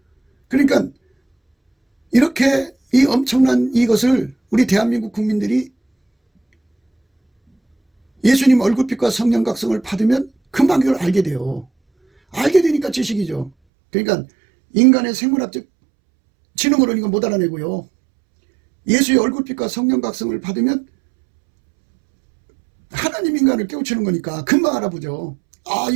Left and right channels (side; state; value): left; drops out; at 13.5 s